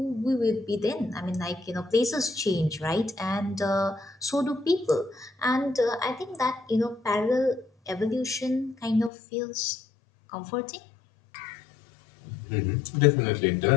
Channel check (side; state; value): right; drops out; at 9.1 s